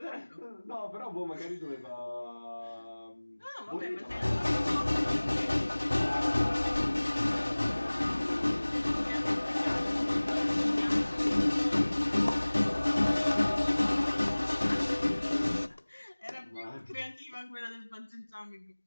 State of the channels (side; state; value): both; inverted; correlation -1.00